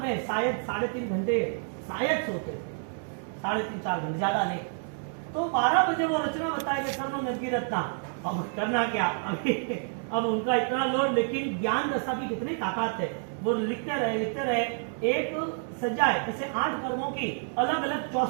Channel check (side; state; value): left; silent; 59 dB below the other